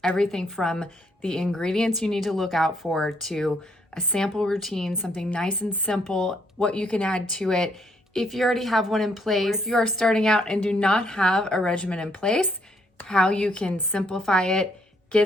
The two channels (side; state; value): both; normal; correlation 0.71